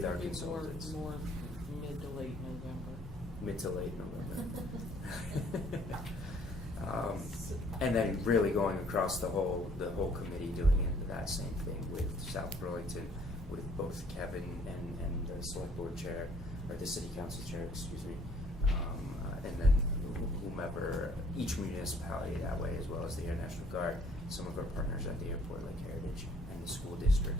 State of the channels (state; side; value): normal; both; correlation 0.60